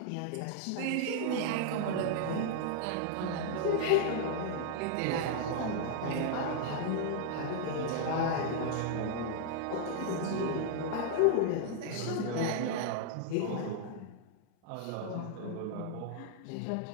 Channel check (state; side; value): different; both; correlation 0.00